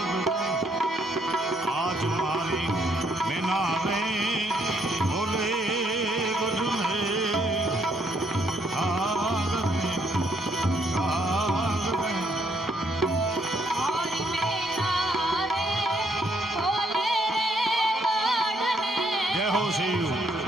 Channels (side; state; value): both; normal; correlation 0.71